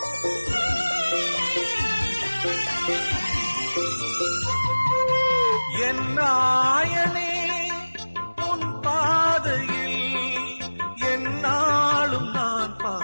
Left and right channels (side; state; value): both; inverted; correlation -1.00